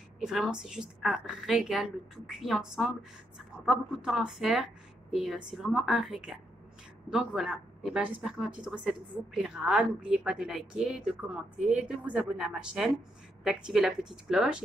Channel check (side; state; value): both; normal; correlation 0.79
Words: et vraiment c'est juste un régal, le tout cuit ensemble, ça prend pas beaucoup de temps à faire et c'est vraiment un régal. Donc voilà, et ben, j'espère que ma petite recette vous plaira. N'oubliez pas de liker, de commenter, de vous abonner à ma chaîne, d'activer la petite cloche.